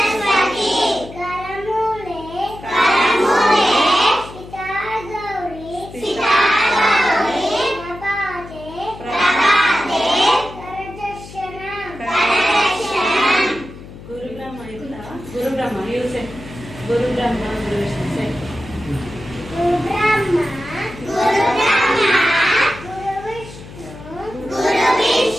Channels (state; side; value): noise; left; hum, 16 dB below the sound